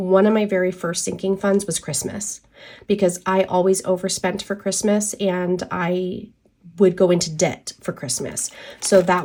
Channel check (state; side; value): identical; both; correlation 1.00